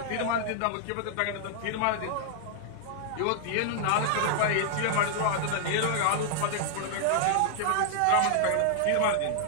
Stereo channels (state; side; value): different; both; correlation -0.01